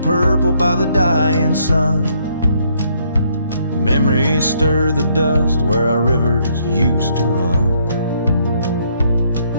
purple by the dying sun, memories stir the dust where our rivers used to run.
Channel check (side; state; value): both; inverted; correlation -0.70